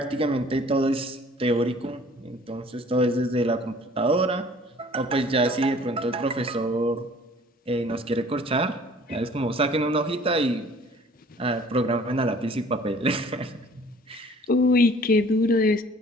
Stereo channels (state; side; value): normal; both; correlation 0.52